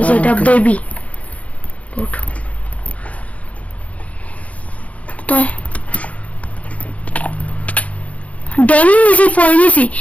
যে এটা বেবি গোট। ড্যামেজ ফরেনিসি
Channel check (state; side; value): late; right; 0.067 ms